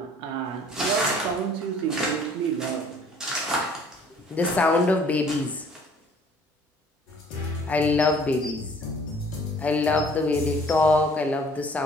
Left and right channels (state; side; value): normal; both; correlation 0.55